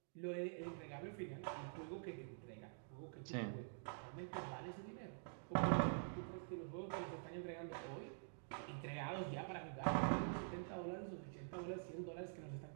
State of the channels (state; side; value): silent; left; digital silence